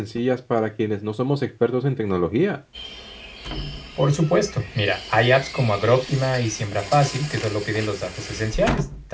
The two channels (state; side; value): identical; both; correlation 1.00